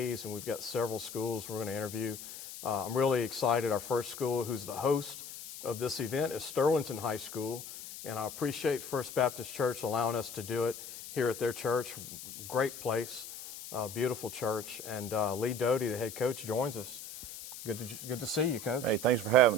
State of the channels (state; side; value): noise; left; hiss, 11 dB below the sound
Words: and we've got several schools we're going to interview. I'm really excited. Our first school, who's the host of this event, is Sterlington High School, and I appreciate First Baptist Church allowing us to do it here at their church. Great place, beautiful church, and Lee Dodie, the head coach, joins us. Good to see you, Coach. Hey, thanks for